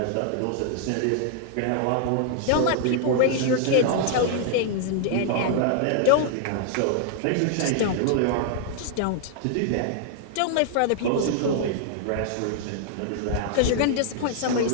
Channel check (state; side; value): different; both; correlation -0.01